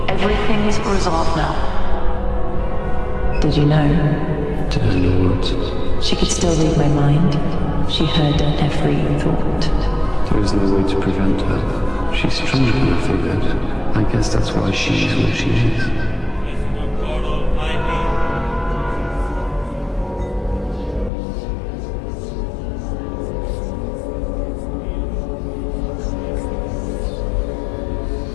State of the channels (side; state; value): right; drops out; at 21.1 s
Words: Everything's resolved now. Did you know? Did I know what? She could still read my mind. She heard every thought. There is no way to prevent her. She's stronger than I figured. I guess that's why she is where she is.